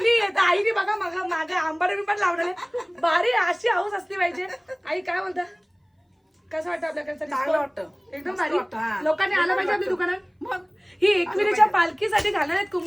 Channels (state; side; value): identical; both; correlation 1.00